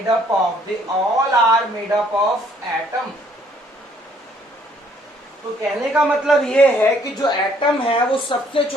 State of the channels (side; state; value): both; normal; correlation 0.63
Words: up of atom. तो कहने का मतलब ये है कि जो एटम है वो सबसे